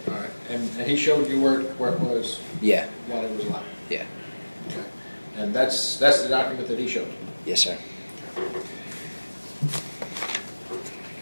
All right. And he showed you where it was Yeah, while he was alive? yeah. Okay. And that's the document that he showed you? Yes, sir.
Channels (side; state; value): both; inverted; correlation -1.00